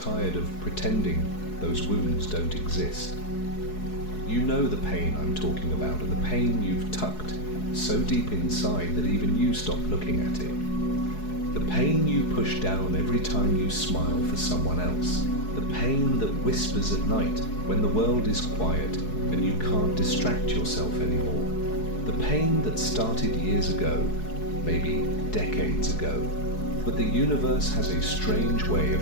of pretending those wounds don't exist. You know the pain I'm talking about, and the pain you've tucked so deep inside that even you stop looking at it. The pain you push down every time you smile for someone else. The pain that whispers at night when the world is quiet and you can't distract yourself anymore. The pain that started years ago, maybe decades ago. But the universe has a strange way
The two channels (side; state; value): right; late; 4.7 ms